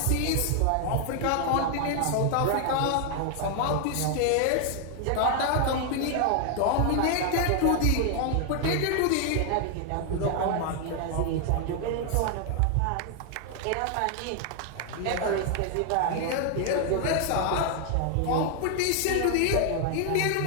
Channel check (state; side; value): different; both; correlation 0.00